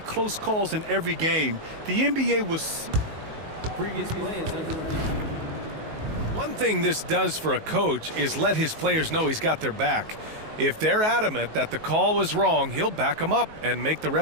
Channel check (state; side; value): late; left; 19 ms